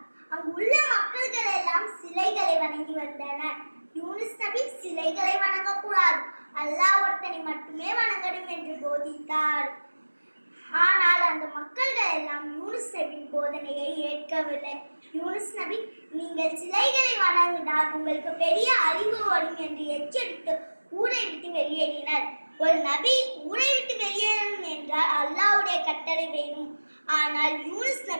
அங்கு உள்ள மக்கள்கள் எல்லாம் சிலைகளை வணங்கி வந்தனர். யூனுஸ் நபி சிலைகளை வணங்கக்கூடாது, அல்லாஹ் ஒருத்தனை மட்டுமே வணங்கணும் என்று போதித்தார். ஆனால் அந்த மக்கள்கள் எல்லாம் யூனுஸ் நபியின் போதனையை ஏற்கவில்லை. யூனுஸ் நபி, நீங்கள் சிலைகளை வணங்கினால் உங்களுக்கு பெரிய அறிவு வரும் என்று எச்சரித்து ஊரை விட்டு வெளியேறினர். ஒரு நபி ஊரை விட்டு வெளியேறணும் என்றால் அல்லாஹ்வுடைய கட்டளை வேணும். ஆனால் யூனுஸ்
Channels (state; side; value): inverted; both; correlation -1.00